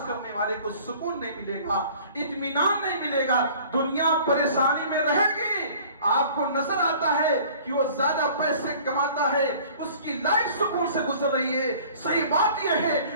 کرنے والے کو سکون نہیں ملے گا، اطمینان نہیں ملے گا، دنیا پریشانی میں رہے گی۔ آپ کو نظر آتا ہے کہ وہ زیادہ پیسے کماتا ہے، اس کی لائف سکون سے گزر رہی ہے، صحیح بات یہ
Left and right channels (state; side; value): inverted; both; correlation -0.49